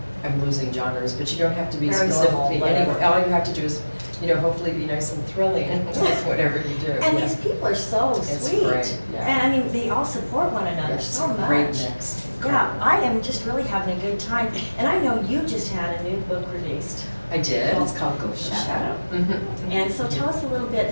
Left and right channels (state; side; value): inverted; both; correlation -1.00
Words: losing genres, but you don't have to be Very specifically normal, anywhere. All you have to do is, you know, hopefully be nice and thrilling with whatever you do. And these people are so sweet. Great, yeah. And I mean, they all support one another so much. Great mix. Yeah, I am just really having a good time. And I know you just had a new book released. I did. It's called Ghost Shadow. And so tell us a little